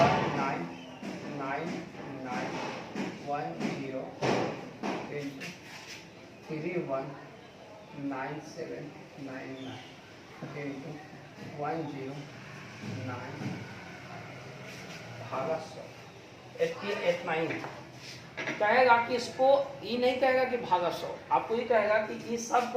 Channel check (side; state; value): both; identical; correlation 1.00